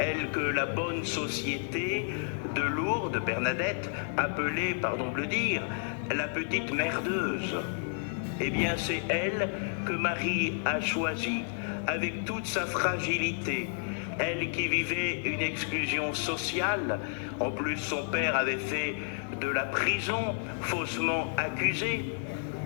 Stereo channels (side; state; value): right; silent; 55 dB below the other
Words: que la bonne société de Lourdes, Bernadette, appelait, pardon de le dire, la petite merdeuse. Eh bien, c'est elle que Marie a choisie, avec toute sa fragilité. Elle qui vivait une exclusion sociale, en plus son père avait fait de la prison, faussement accusé,